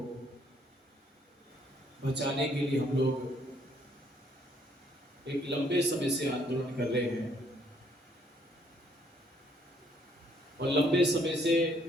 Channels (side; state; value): both; normal; correlation 0.66